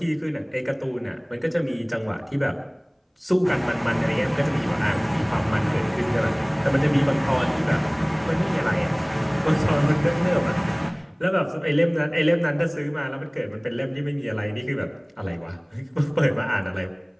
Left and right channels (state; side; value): identical; both; correlation 1.00